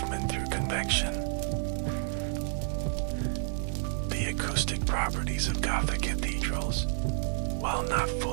through convection. The acoustic properties of Gothic cathedrals, while not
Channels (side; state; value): left; silent; 58 dB below the other